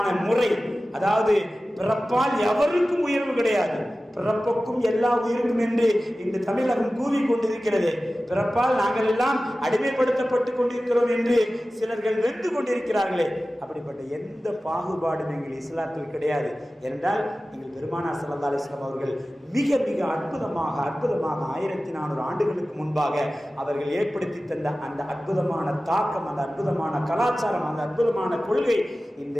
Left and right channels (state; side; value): normal; both; correlation 0.96